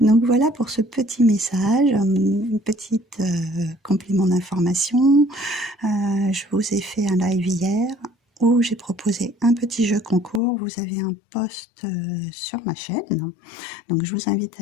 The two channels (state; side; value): drops out; right; at 10.4 s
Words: voilà pour ce petit message, une petite complément d'information. Je vous ai fait un live hier où j'ai proposé un petit jeu concours. Vous avez un post sur ma chaîne. Donc je vous invite